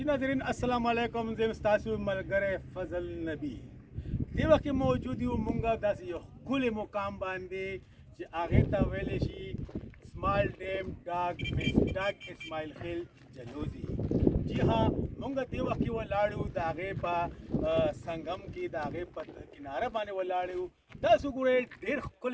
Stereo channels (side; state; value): both; identical; correlation 1.00